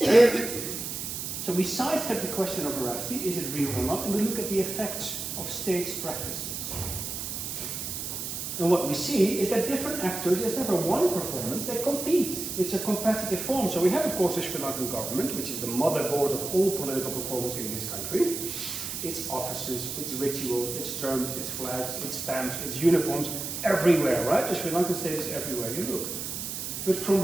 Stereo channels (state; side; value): noise; right; hiss, 5 dB below the sound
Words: So we sidestep the question of veracity, is it real or not, and we look at the effects of states' practices. And what we see is that different actors, there's never one performance, they compete. It's a competitive form. So we have, of course, the Sri Lankan government, which is the motherboard of all political performance in this country. Its offices, its rituals, its terms, its flags, its stamps, its uniforms, everywhere, right? The Sri Lankan state is everywhere you look. But from